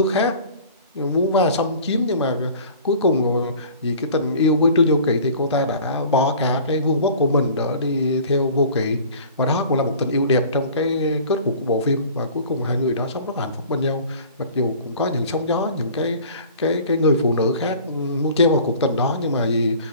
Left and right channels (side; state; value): both; inverted; correlation -0.45